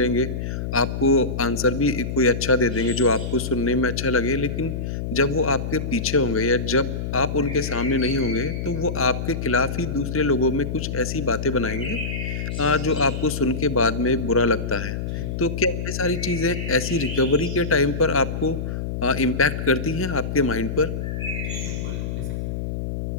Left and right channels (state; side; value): noise; left; hum, 4 dB below the sound